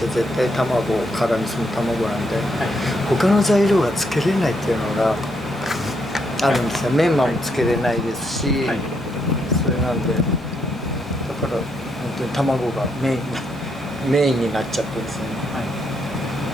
対卵、辛味噌の卵なんで、他の材料がつけれないっていうのがあるんですよ。メンマもつけれないですし、それなんで、だから本当に卵がメインになっちゃってですね。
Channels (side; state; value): both; normal; correlation 0.76